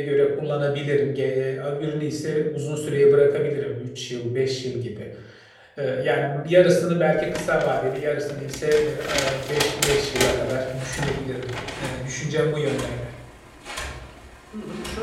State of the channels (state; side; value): identical; both; correlation 1.00